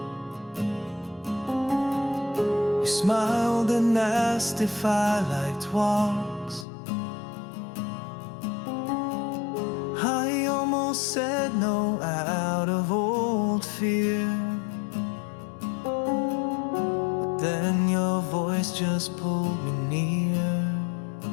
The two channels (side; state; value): right; drops out; at 6.7 s